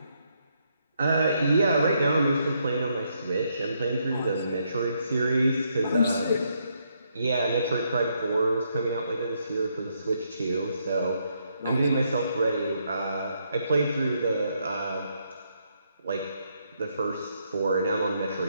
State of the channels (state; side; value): inverted; both; correlation -0.76